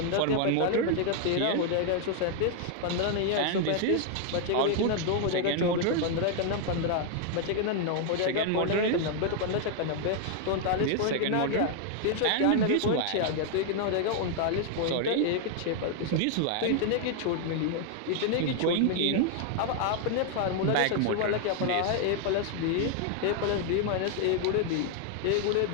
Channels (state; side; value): different; both; correlation 0.00